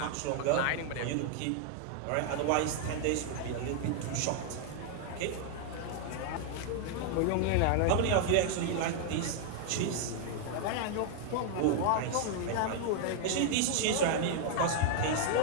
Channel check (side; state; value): both; different; correlation 0.00